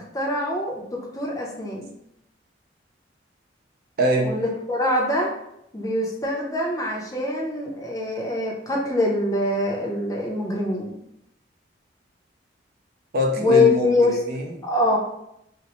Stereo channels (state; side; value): normal; both; correlation 0.37